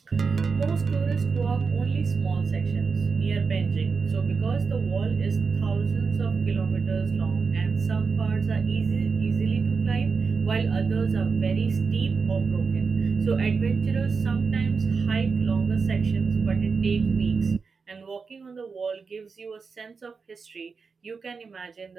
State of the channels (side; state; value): left; quieter; 5.0 dB